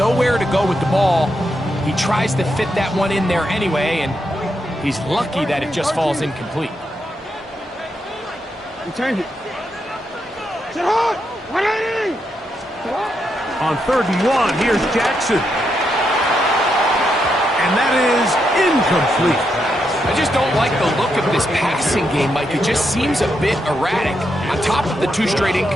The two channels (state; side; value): normal; both; correlation 0.82